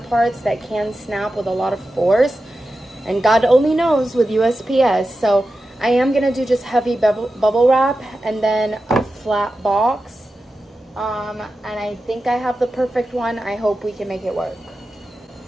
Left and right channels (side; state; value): both; normal; correlation 0.92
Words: that can snap with a lot of force. And God only knows with USPS. So I am going to do just heavy bubble wrap and then a flat box. And I think I have the perfect one. I hope we can make it work.